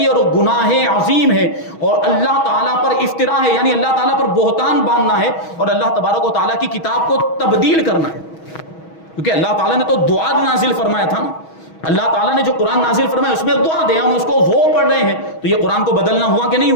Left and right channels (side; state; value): right; late; 6.2 ms